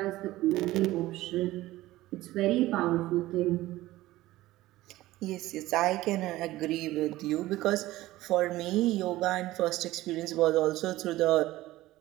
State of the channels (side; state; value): left; quieter; 16.8 dB